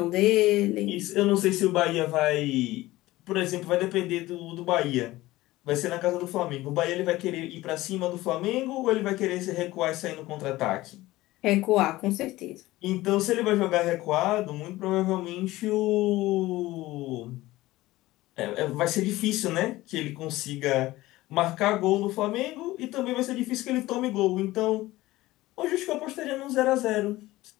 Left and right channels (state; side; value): quieter; right; 17.8 dB